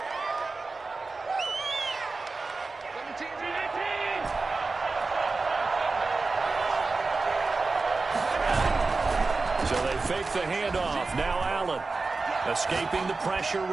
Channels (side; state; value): left; quieter; 3.8 dB